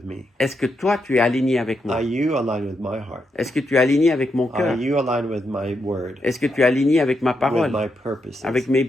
me? est-ce que toi, tu es aligné avec moi? Are you aligned with my heart? Est-ce que tu es aligné avec mon Are cœur? you aligned with my word? Est-ce que tu es aligné avec ma With parole? my purposes? Avec mes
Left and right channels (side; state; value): both; normal; correlation 0.82